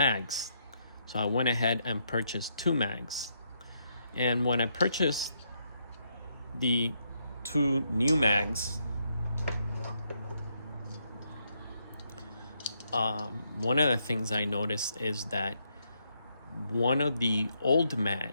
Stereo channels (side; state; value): both; inverted; correlation -0.77